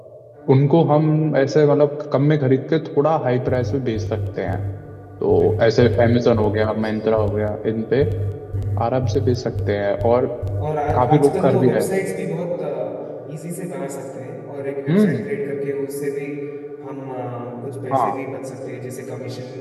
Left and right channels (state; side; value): identical; both; correlation 1.00